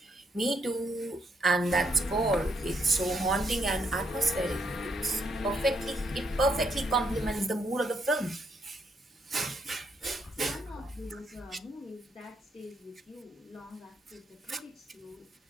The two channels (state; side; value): normal; both; correlation 0.76